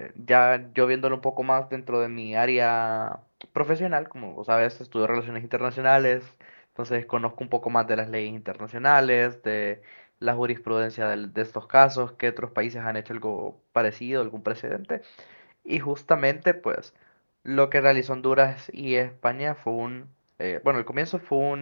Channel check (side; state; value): both; inverted; correlation -1.00